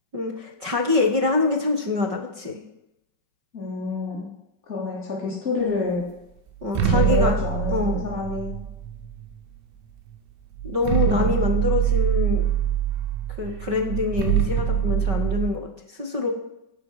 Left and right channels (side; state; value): left; late; 5.3 ms